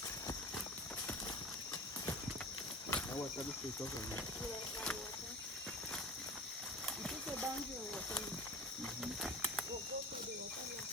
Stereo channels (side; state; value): both; normal; correlation 0.34